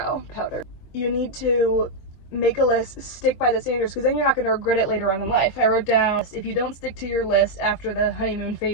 powder. You need to make a list, stick by the standards, because then you're not going to regret it later on in life. I wrote down, if you don't stick to your list after the honeymoon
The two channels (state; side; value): late; right; 24 ms